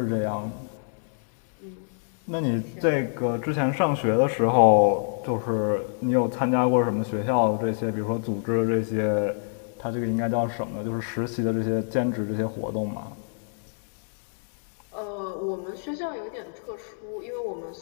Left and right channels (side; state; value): right; silent; digital silence